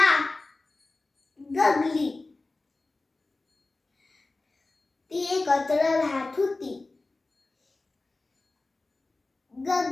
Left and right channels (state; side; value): quieter; right; 3.3 dB